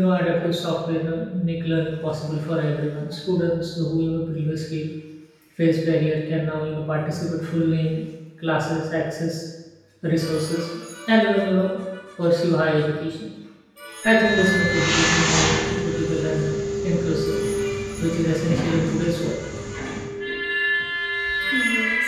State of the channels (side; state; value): both; identical; correlation 1.00